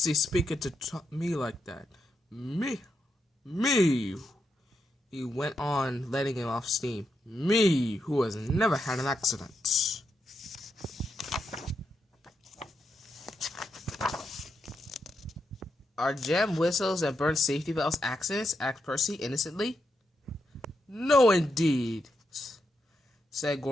speaking to me like that. Me, he went on, letting him off steam. Me, who has never had an accident. Are jam whistles and burnt safety belts accidents? Asked Percy innocently. No, indeed, said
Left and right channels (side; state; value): both; normal; correlation 0.83